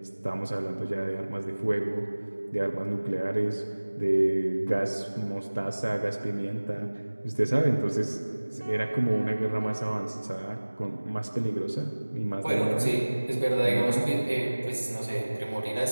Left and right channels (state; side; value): inverted; both; correlation -1.00